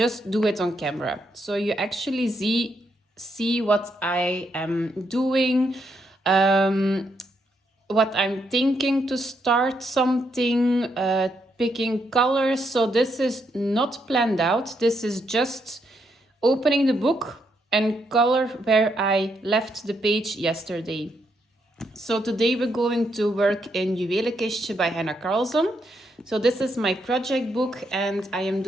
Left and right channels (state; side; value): normal; both; correlation 0.78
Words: do it on camera. So you actually see what I am doing, what I'm thinking to start something, picking colors. So this is not planned out. This is just opening the book and color where I left the page yesterday. So today we're going to work in Juwelenkistje by Hanna Karlzon. So this is my project book and I am